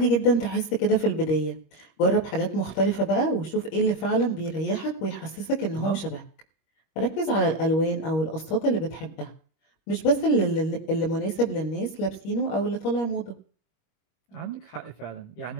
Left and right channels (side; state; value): right; late; 25 ms